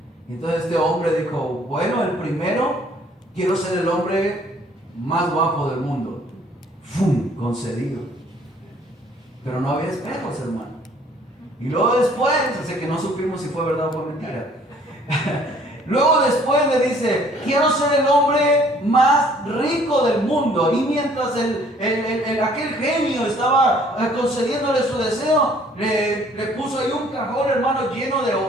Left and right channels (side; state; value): both; normal; correlation 0.58